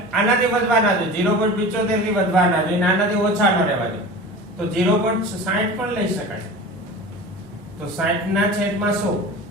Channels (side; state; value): both; normal; correlation 0.35